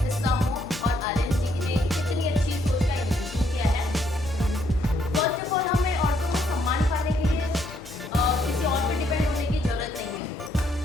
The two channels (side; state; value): both; normal; correlation 0.71